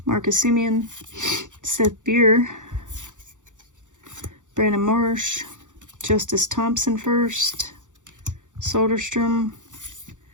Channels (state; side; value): late; left; 0.86 ms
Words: Marcus Semien, Seth Beer, Brandon Marsh, Justice Thompson first, Soderstrom,